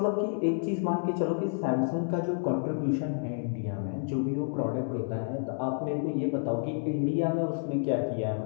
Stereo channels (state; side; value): silent; right; digital silence